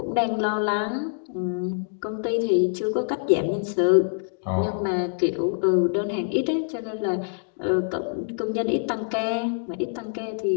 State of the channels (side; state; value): right; silent; digital silence